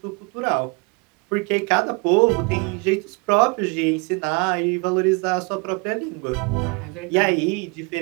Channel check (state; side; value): quieter; left; 31.2 dB